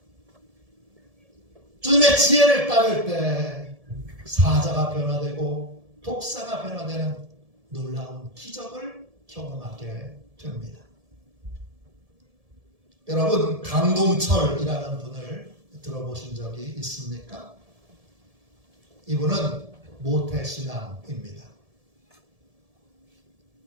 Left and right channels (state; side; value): late; left; 1.7 ms